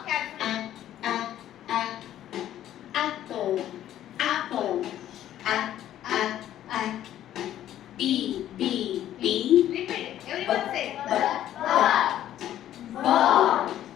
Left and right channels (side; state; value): right; quieter; 12.1 dB